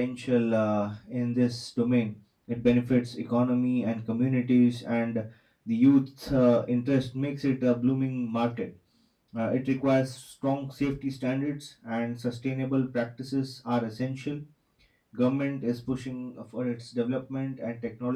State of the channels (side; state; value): both; identical; correlation 1.00